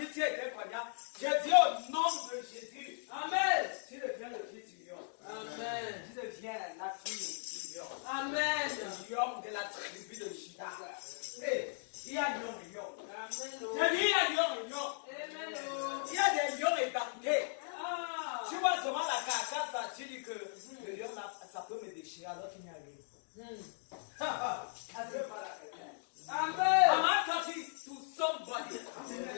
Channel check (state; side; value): silent; right; digital silence